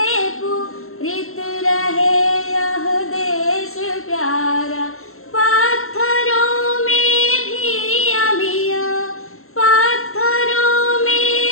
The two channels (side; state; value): right; late; 0.62 ms